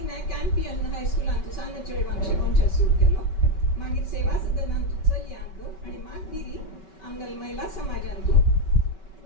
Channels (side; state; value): right; late; 5.3 ms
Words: कॅम्पियन हायस्कुलांत सान चेडवांक शिकोवचें सुरू केलो मागीर सेवा सदनांत चलयांक आनी मागीर आमगेल महिला समाजांतूं